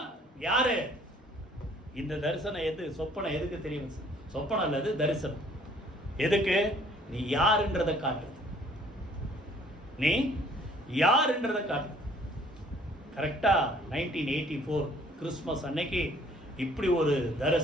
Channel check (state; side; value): normal; both; correlation 0.58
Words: யாரு? இந்த தரிசனம் சொப்பனம் எதுக்கு தெரியும்? சொப்பனம் அல்லது தரிசனம் எதுக்கு? நீ யாருன்றதை காட்டு. நீ யாருன்றதை காட்டு. கரெக்டா 1984 கிறிஸ்மஸ் அன்னைக்கு இப்படி ஒரு